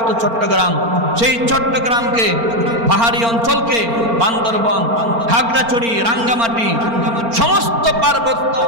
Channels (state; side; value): late; left; 4.4 ms